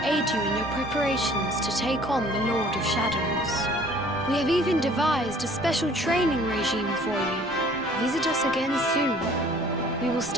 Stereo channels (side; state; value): both; normal; correlation 0.54